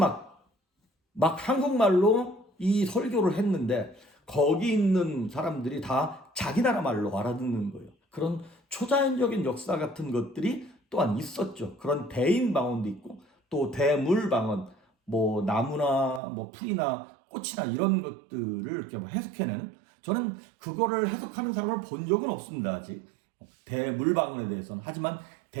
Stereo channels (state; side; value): drops out; left; at 16.2 s